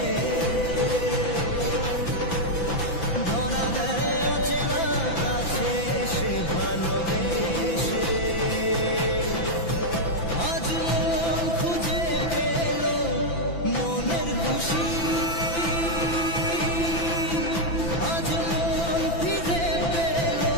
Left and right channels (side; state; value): right; late; 5.9 ms